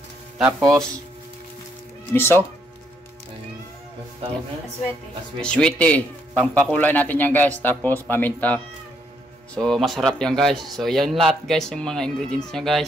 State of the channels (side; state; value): both; normal; correlation 0.73